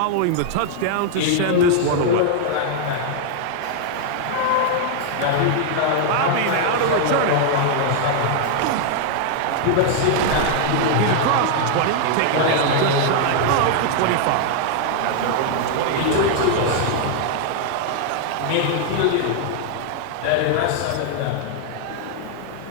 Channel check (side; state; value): both; different; correlation 0.00